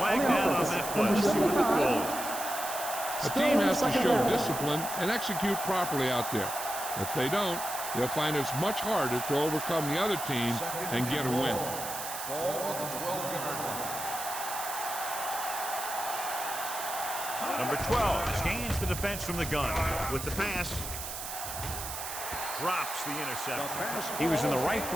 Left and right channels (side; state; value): right; noise; hiss, 7 dB below the sound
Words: down on that play. See what the call is. A team has to show discipline and execute properly out there. If they don't, they'll find it's much harder to overcome the other team and get a win. Ball on the 12-yard line. Number 12 scans the defense from the gun with the pass. Drops the interception. He was in the right